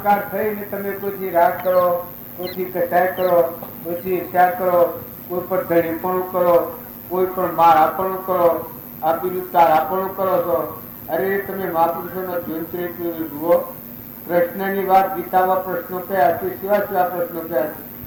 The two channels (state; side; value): identical; both; correlation 1.00